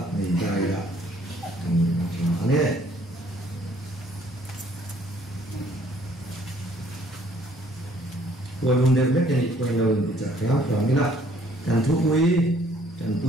này trai là anh ấy rồi vùng đẹp nhất này quay đầu thì chắc kéo vào cái là cần thuốc quý cần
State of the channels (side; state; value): both; normal; correlation 0.61